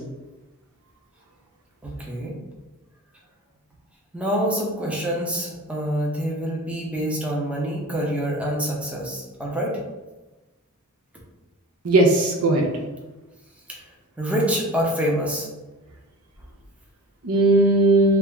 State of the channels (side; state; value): both; normal; correlation 0.37